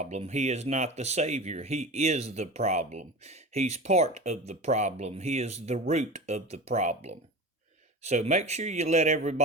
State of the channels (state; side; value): normal; both; correlation 0.30